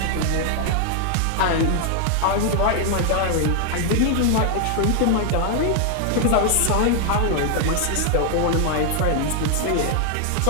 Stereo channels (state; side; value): different; both; correlation 0.00